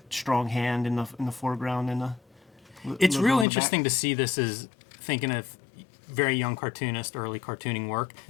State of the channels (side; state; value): right; drops out; at 3.5 s